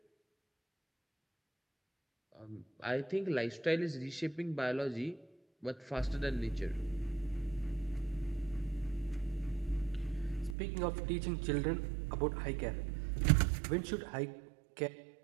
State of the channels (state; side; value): drops out; left; at 10.6 s